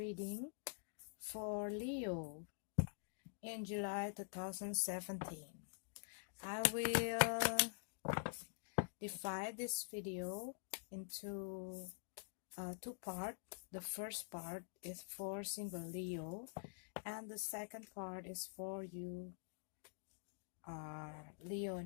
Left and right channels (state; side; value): silent; right; digital silence